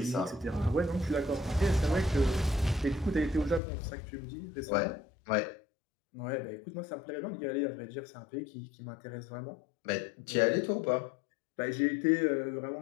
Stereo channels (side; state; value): right; drops out; at 3.6 s